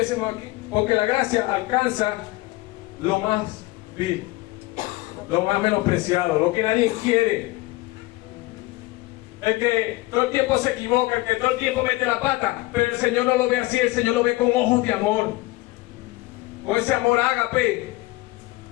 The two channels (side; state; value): right; quieter; 20.2 dB